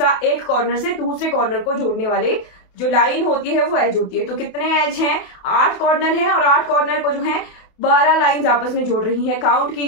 एक कॉर्नर से दूसरे कॉर्नर को जोड़ने वाले जो लाइन होती है वो एज होती है। तो कितने एज हैं, 8 कॉर्नर हैं, और 8 कॉर्नर को जो है 12 लाइंस आपस में जोड़ रही हैं। काउंट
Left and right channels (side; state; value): right; late; 28 ms